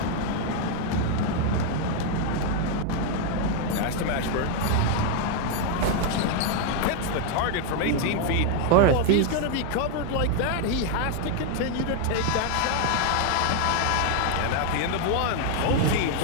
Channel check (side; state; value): both; different; correlation 0.00